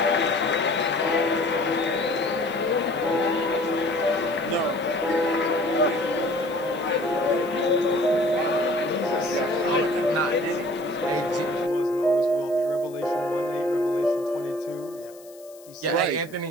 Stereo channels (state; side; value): noise; left; hiss, 24 dB below the sound